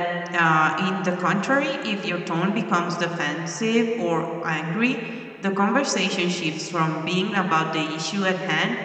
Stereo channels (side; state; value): both; identical; correlation 1.00